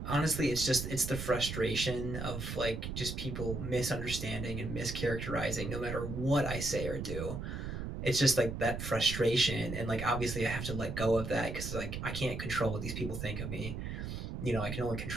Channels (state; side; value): noise; right; rumble, 5 dB below the sound